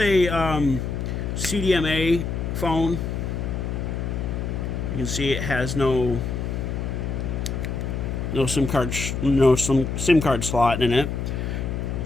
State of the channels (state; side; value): noise; left; hum, 3 dB below the sound